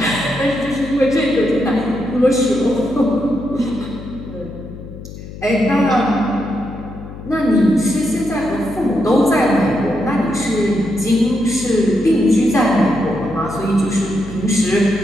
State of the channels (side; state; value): left; noise; hum, 13 dB below the sound